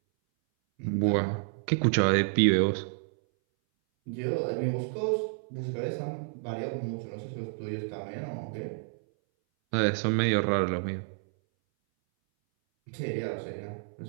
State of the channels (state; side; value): silent; left; 58 dB below the other